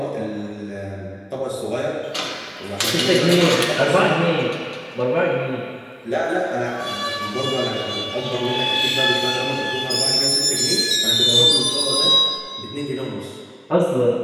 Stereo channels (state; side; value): identical; both; correlation 1.00